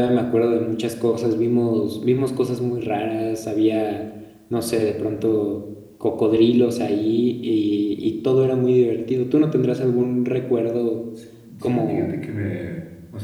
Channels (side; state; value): both; identical; correlation 1.00